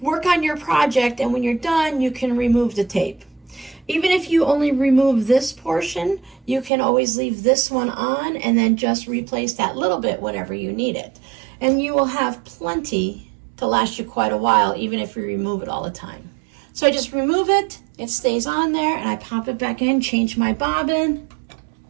work on your project, and when you're done, you can remove the tape. Even if you only remove this portion, you can always leave this one on and then just replace that little bit whenever you need it. And you will have plenty to last you quite a while, even if you remove it all the time. So I just remove it, it stays on there, and I pop it back in, change my bobbin,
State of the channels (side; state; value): left; drops out; at 6.7 s